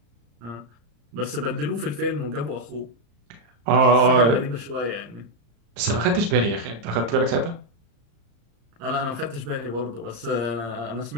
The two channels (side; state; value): left; late; 35 ms